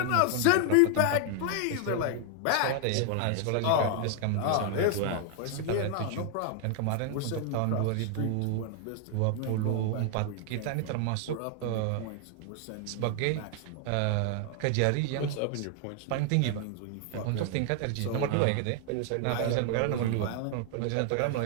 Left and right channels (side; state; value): both; different; correlation 0.00